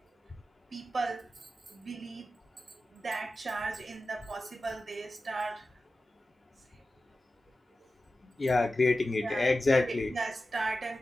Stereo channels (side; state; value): both; normal; correlation 0.93